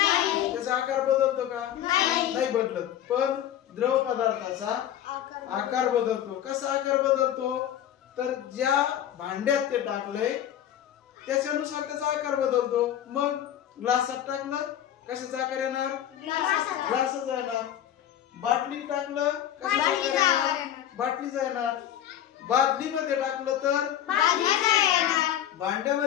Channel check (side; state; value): right; quieter; 11.0 dB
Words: त्याचा आकार बदलतो का? नाही बदलत. पण द्रव पदार्थाचा आकार बदलतो. कसा आकार बदलतो? तर ज्या भांड्यात ते टाकलंय त्याच्यानुसार त्याचा आकार बदलतो. मग ग्लासात टाकलं, कशाचा आकार येणार? ग्लासाचा येणार. बाटलीत टाकलं, कशाचा आकार येणार? बाटलीचा येणार. बादलीमध्ये टाकलं तर